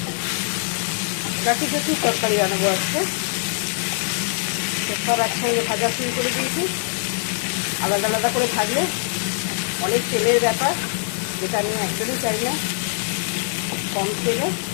কাটি কাটি তরকারি বানাবো আজকে। তো সব একসঙ্গে ভাজা শুরু করে দিয়েছি। আলাদা আলাদা করে ভাজলে অনেক তেলের ব্যাপার, যেটা আমি একদমই চাই না। কম তেলে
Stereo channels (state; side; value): silent; right; digital silence